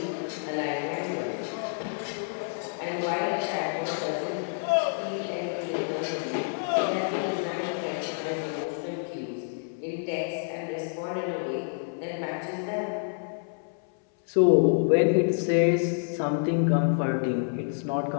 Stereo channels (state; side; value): silent; right; 59 dB below the other